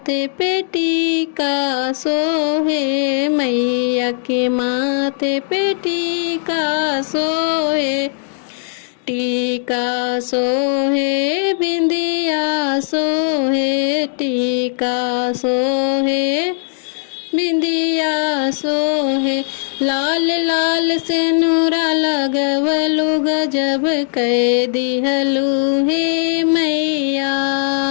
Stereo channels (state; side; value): silent; right; digital silence